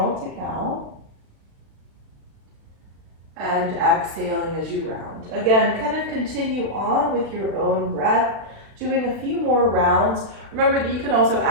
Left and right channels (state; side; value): late; left; 36 ms